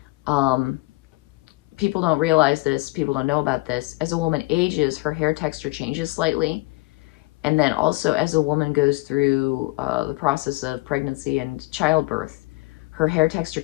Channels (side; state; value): right; quieter; 23.1 dB